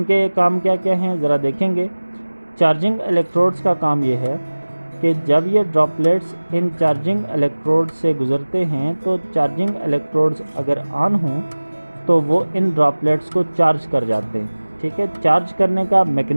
काम क्या क्या हैं ज़रा देखेंगे। चार्जिंग इलेक्ट्रोड्स का काम ये है कि जब ये ड्रॉपलेट्स इन चार्जिंग इलेक्ट्रोड्स से गुज़रते हैं तो चार्जिंग इलेक्ट्रोड्स अगर ऑन हों तो वो इन ड्रॉपलेट्स को चार्ज कर जाते हैं, ठीक है। चार्ज करने का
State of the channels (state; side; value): inverted; both; correlation -1.00